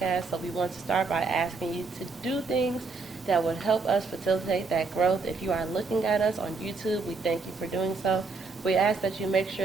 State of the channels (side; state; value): left; quieter; 4.3 dB